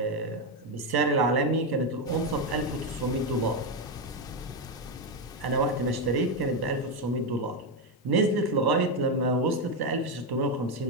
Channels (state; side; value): normal; both; correlation 0.07